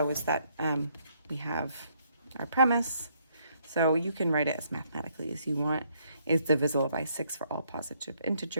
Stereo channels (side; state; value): both; inverted; correlation -0.70